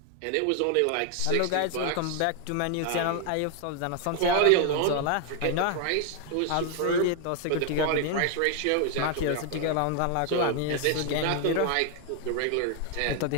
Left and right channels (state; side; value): different; both; correlation 0.00